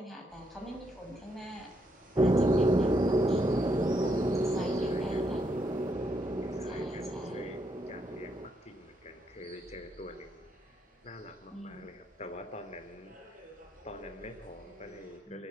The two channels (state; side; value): normal; both; correlation 0.76